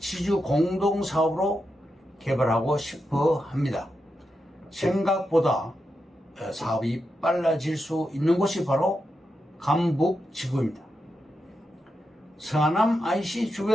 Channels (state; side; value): normal; both; correlation 0.87